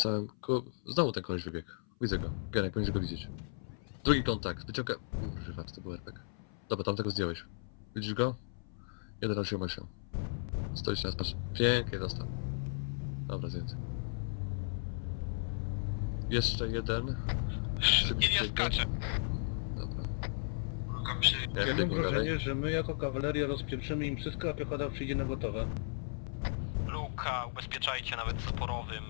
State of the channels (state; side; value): silent; right; 54 dB below the other